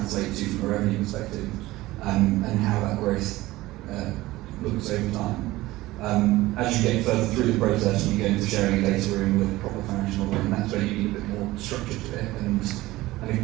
to from a revenue perspective, and how that growth looks over time. As you get further through the process, and you go into sharing a data room with a proper financial model, and that's where you need a bit more structure to it. And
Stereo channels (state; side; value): quieter; left; 18.1 dB